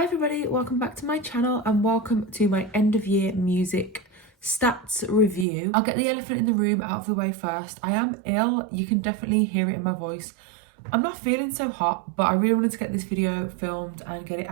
Hi everybody, welcome back to my channel and welcome to my end of year music stats review. I'll get the elephant in the room out of the way first. I am ill, you can definitely hear it in my voice. I'm not feeling so hot, but I really wanted to get this video filmed and get it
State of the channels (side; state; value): left; drops out; at 5.5 s